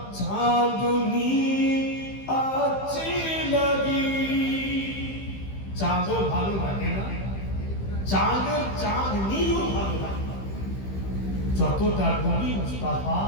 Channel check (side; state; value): right; late; 15 ms